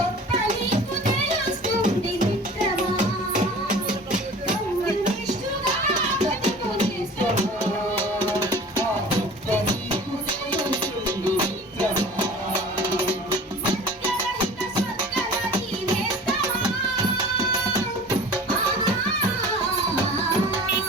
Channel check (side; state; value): both; normal; correlation 0.42